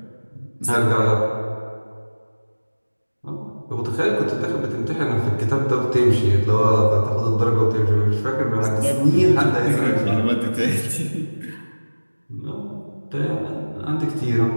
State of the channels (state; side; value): inverted; both; correlation -1.00